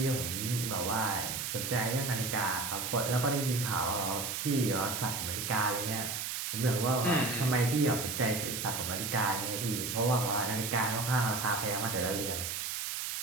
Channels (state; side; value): noise; right; hiss, 3 dB below the sound